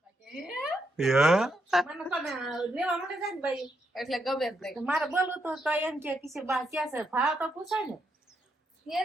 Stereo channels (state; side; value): normal; both; correlation 0.80